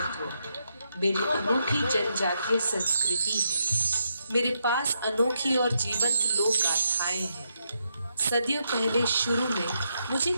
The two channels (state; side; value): inverted; both; correlation -0.80